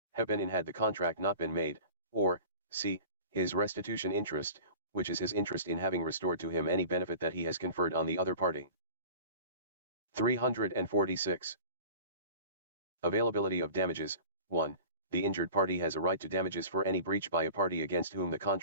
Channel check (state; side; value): inverted; both; correlation -0.41